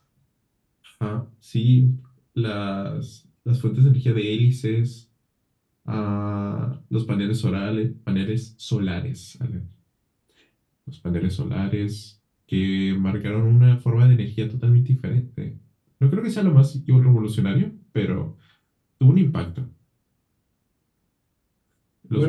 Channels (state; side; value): identical; both; correlation 1.00